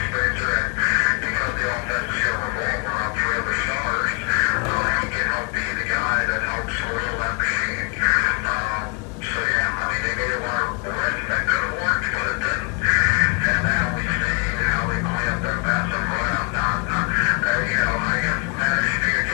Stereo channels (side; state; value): right; quieter; 31.1 dB